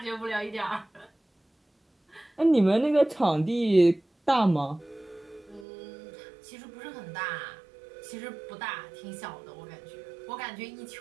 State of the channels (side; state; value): left; drops out; at 5.7 s